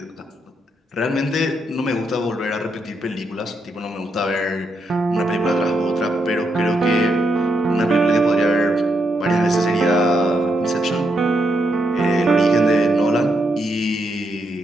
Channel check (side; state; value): both; normal; correlation 0.80